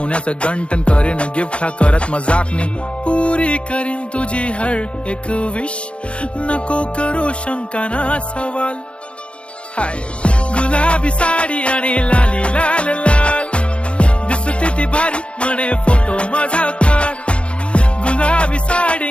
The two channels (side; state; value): right; late; 0.059 ms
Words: गंटन. करीन गिफ्ट हा करत मजाकनी, पुरी करीन तुझी हर एक विश. नको करू शंका ना सवाल. हाय गुलाबी साडी आणि लाली लाल लाल, दिसते ती भारी म्हणे फोटो माझा काढ. गुलाबी